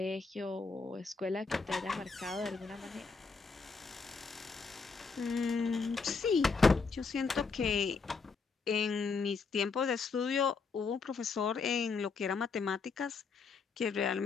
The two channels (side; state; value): right; quieter; 4.8 dB